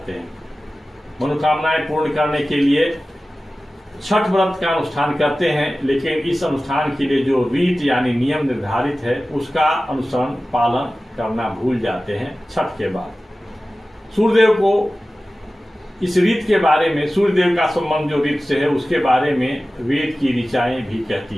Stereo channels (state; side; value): normal; both; correlation 0.96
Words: हैं। मनोकामनाएं पूर्ण करने के लिए छठ व्रत का अनुष्ठान करते हैं, लेकिन इस अनुष्ठान के लिए जो रीत यानी नियम निर्धारित है उसका अनुसरण पालन करना भूल जाते हैं। छठ के बाद सूर्यदेव को इस रीत के बारे में, सूर्यदेव का संबंध जो रीत से है उसके बारे में वेद की ऋचाएं भी कहती